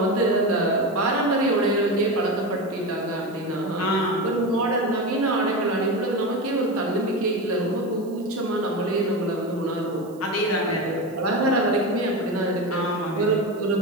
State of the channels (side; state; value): right; noise; hiss, 27 dB below the sound